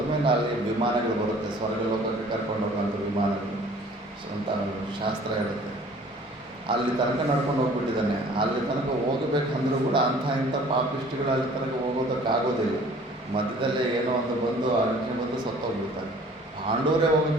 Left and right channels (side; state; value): both; normal; correlation 0.51